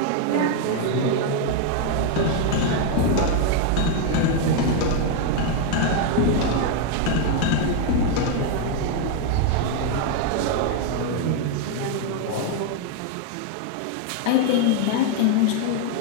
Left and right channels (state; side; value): different; both; correlation 0.01